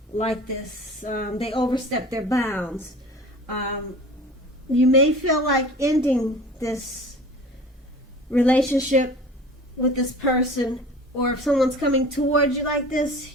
like this. They overstep their bounds. You may feel like ending this relationship with this person, or if someone's coming towards you like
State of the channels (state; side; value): normal; both; correlation 0.41